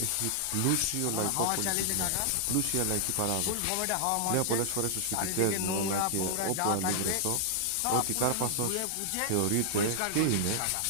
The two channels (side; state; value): both; different; correlation -0.01